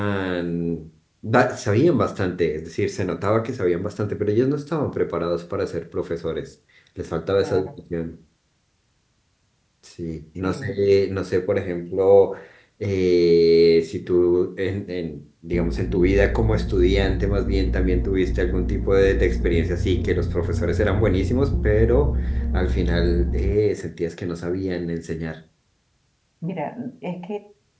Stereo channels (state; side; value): identical; both; correlation 1.00